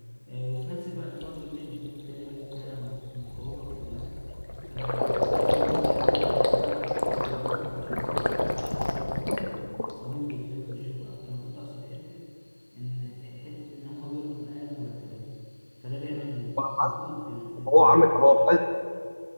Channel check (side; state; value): both; inverted; correlation -1.00